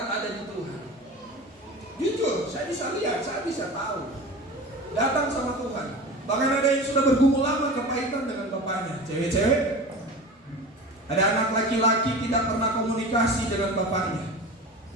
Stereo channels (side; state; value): both; normal; correlation 0.33